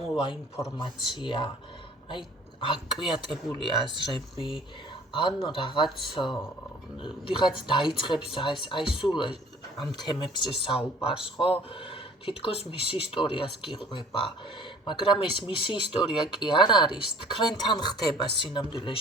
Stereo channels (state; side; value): normal; both; correlation 0.50